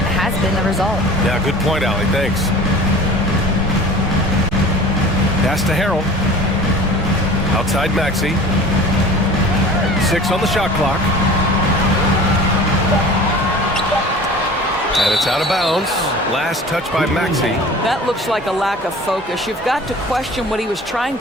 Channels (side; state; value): both; normal; correlation 0.41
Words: has been the result. Yeah, good point, Allie. Thanks. Pass to Harrell. Outside Maxey. 6 on the shot clock. And it's out of bounds. Last touch by Maxey. That looks like a lack of focus. You've got to question what he was trying